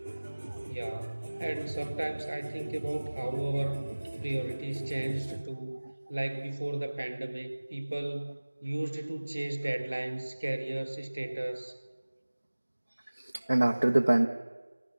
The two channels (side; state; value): both; inverted; correlation -1.00